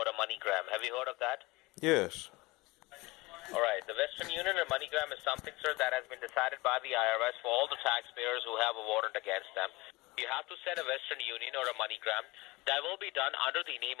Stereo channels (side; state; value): right; quieter; 22.6 dB